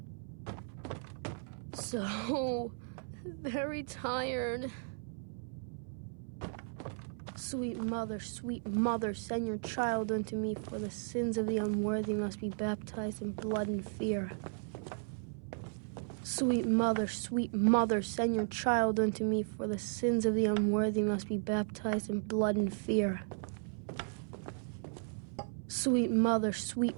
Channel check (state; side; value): silent; left; 54 dB below the other